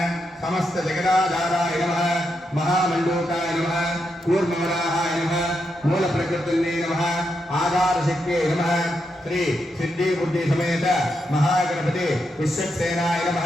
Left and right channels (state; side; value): normal; both; correlation 0.83